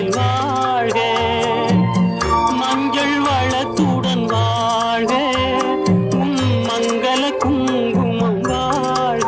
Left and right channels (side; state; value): both; identical; correlation 1.00